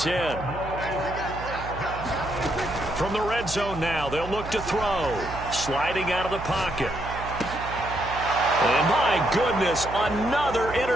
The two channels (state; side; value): noise; right; hum, 10 dB below the sound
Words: From the red zone now, they'll look to throw. Sliding out of the pocket. And my goodness, another